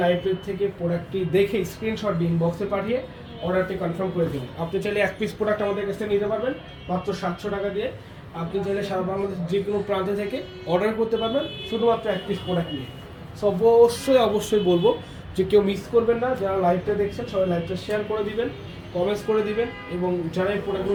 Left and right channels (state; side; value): identical; both; correlation 1.00